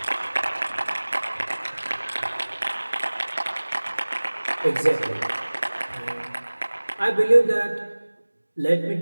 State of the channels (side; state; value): both; inverted; correlation -1.00